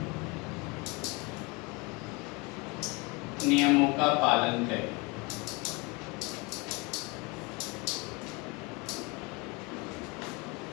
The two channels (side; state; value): right; quieter; 26.4 dB